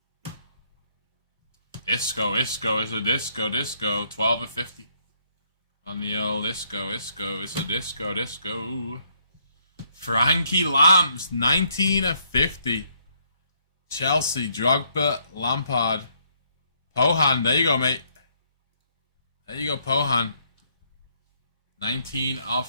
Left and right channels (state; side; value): inverted; both; correlation -0.70